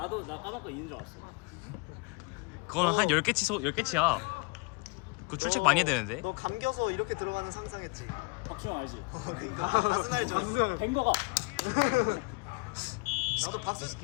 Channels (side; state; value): right; quieter; 28.8 dB